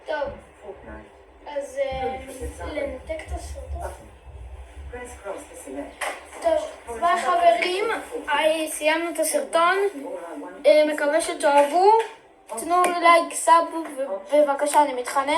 טוב. אז לנתק את הסרטון. טוב, ביי חברים, סיימנו את הסרטון, מקווה שתאהבו, תנו לייק, סאב, ובבקשה אני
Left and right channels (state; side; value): identical; both; correlation 1.00